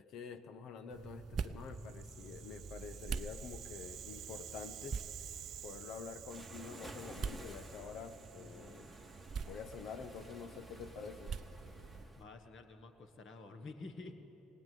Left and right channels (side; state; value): both; normal; correlation 0.66